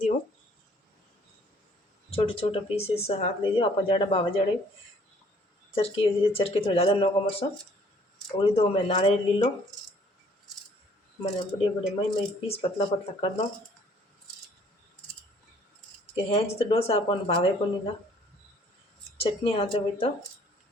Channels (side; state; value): both; normal; correlation 0.59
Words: हूँ, छोटे छोटे पीसेस हाथ लीजिए। आप जड़ा बावा जड़े चरकी थोड़ा ज़्यादा नौको मरचा और दो मैं नारियल ली लो। मैंने बड़े बड़े मई मई पीस पतला पतला कर दो कि हेंच तो डोसा अपन भावे को नहीं था। चटनी हाथे हुई तो